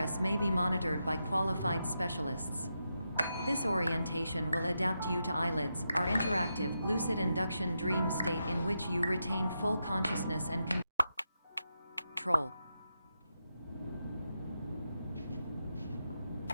may be monitored by qualified specialists. This orientation will adapt you to eyelids, our interactive, lucid induction dream state in which you retain full consciousness and control.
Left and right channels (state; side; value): inverted; both; correlation -0.86